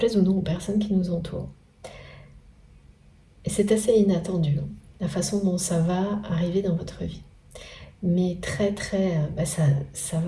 ou non aux personnes qui nous entourent. Et c'est assez inattendu, hein, la façon dont ça va arriver dans votre vie. Mais très très, ça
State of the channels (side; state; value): both; identical; correlation 1.00